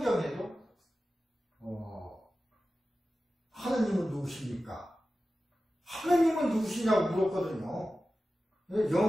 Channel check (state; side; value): normal; both; correlation 0.94